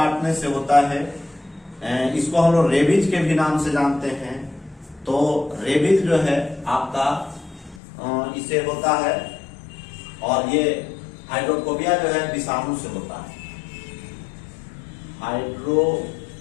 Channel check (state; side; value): drops out; right; at 7.8 s